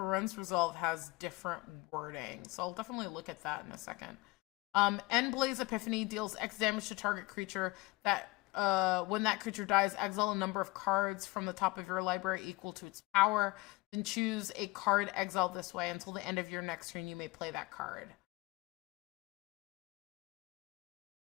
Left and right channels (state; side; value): quieter; right; 22.7 dB